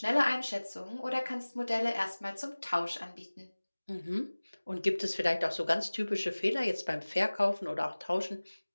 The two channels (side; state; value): both; inverted; correlation -1.00